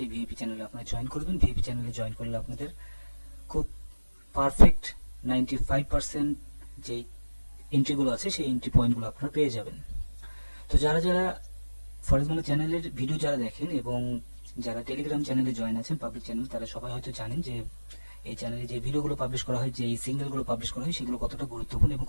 ভিআইপি চ্যানেলে আপনারা জয়েন করবেন। ভিআইপি চ্যানেলে জয়েন করলে আপনাদের খুব পারফেক্ট 95% যে এন্ট্রিগুলো আছে সেই এন্ট্রি পয়েন্টগুলো আপনারা পেয়ে যাবেন। তো যারা যারা ফরেজমানের চ্যানেলের ভিডিও যারা দেখেন এবং যারা টেলিগ্রাম চ্যানেলে জয়েন আছেন, পাবলিক চ্যানেল, তারা সবাই হয়তো জানেন যে এই চ্যানেলে যে ভিডিওগুলো পাবলিশ করা হয়, যে সিগন্যালগুলো পাবলিশ করা হয়, সেগুলো কতটা গুরুত্বপূর্ণ এবং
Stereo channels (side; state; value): both; inverted; correlation -1.00